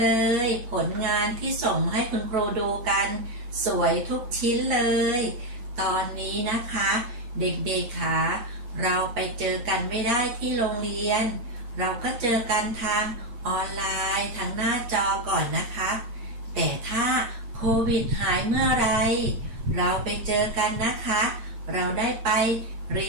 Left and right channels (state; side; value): late; left; 8.5 ms